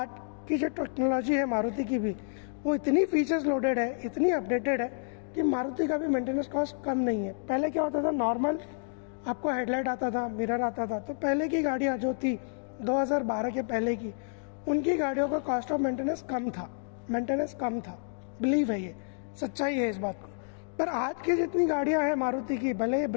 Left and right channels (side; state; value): right; silent; digital silence